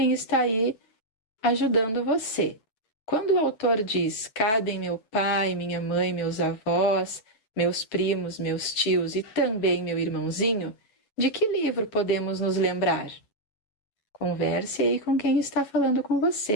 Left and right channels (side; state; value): right; late; 9.3 ms